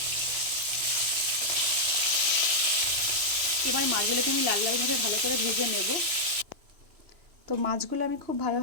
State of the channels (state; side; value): late; left; 2.9 ms